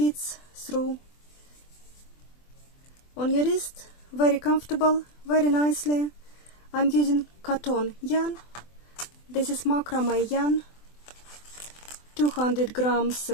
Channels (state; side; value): late; right; 24 ms